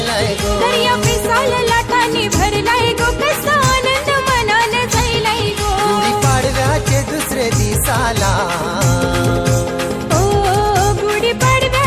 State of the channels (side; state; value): both; identical; correlation 1.00